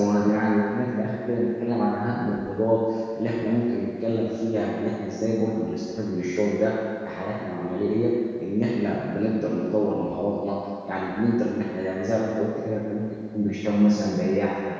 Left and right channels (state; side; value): identical; both; correlation 1.00